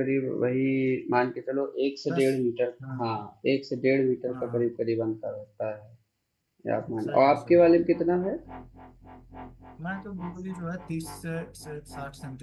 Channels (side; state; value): both; identical; correlation 1.00